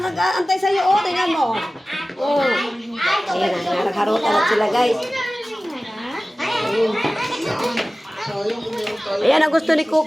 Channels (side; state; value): both; normal; correlation 0.97